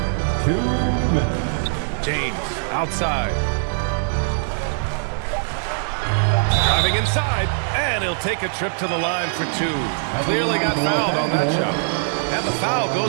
2 minutes. James outside. Driving inside, and he'll take a trip to the line for 2. Clearly got fouled on that shot. And the foul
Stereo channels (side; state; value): left; silent; digital silence